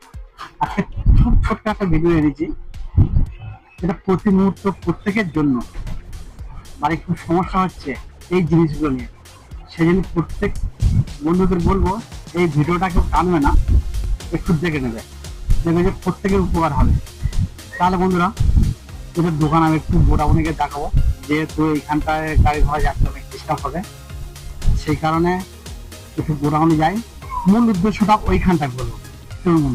আজকে খুব ছোট্ট একটা ভিডিও এনেছি, এটা প্রতি মুহূর্ত প্রত্যেকের জন্য। বাড়ি খুব সমস্যা হচ্ছে এই জিনিসগুলো নিয়ে, সেই জন্য প্রত্যেক বন্ধুদের বলবো এই ভিডিওটা কেউ টানবে না, একটু দেখে নেবে, দেখবে যে প্রত্যেকের উপকার হবে। তাহলে বন্ধুরা, এদের দোকান আমি একটু বোটাবনিকে দেখাবো, যেহেতু এইখানটায় গাড়ি ঘোড়া যাচ্ছে অনেক ডিস্টার্ব হবে, সেই কারণে একটু বোটাবনি যাই। মূল উদ্দেশ্যটা ওইখানটায় বলবো, চলুন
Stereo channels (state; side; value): identical; both; correlation 1.00